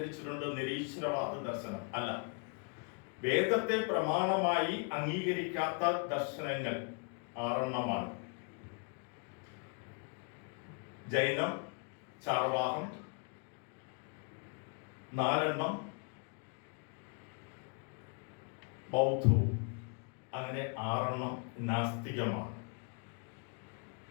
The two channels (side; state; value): right; quieter; 37.1 dB